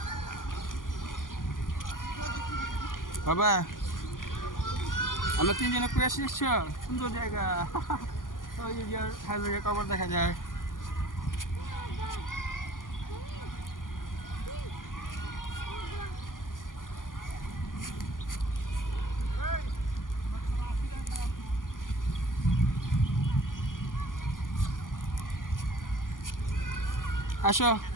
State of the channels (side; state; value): right; late; 0.89 ms